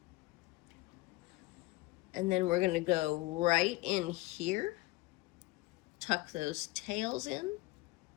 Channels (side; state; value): right; quieter; 20.9 dB